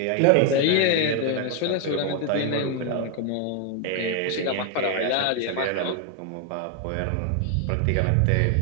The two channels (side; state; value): both; different; correlation 0.00